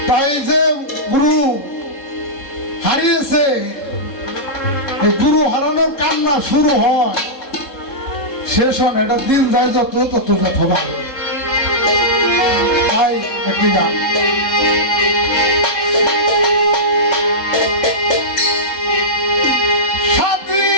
তাই যে গুরু হারিয়েছে, এই গুরু হারানোর কান্না শুরু হয়, শেষ হয় এটা দিন যায় যত তত যত ভালো। তাই একটি গান,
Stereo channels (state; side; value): late; right; 3.7 ms